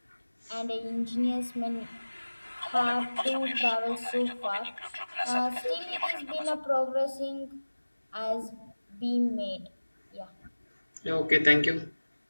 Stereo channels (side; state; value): both; inverted; correlation -1.00